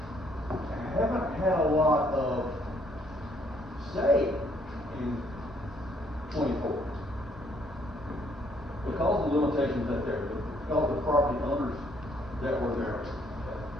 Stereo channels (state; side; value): normal; both; correlation 0.67